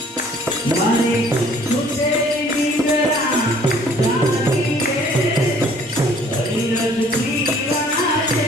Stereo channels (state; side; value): normal; both; correlation 0.56